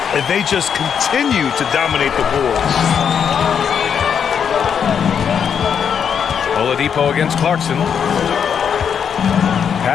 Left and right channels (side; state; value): right; quieter; 7.5 dB